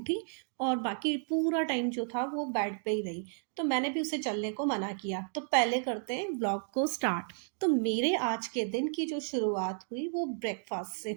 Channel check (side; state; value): left; silent; 56 dB below the other